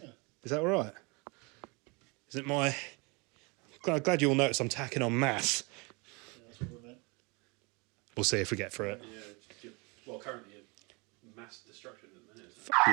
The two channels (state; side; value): quieter; left; 29.2 dB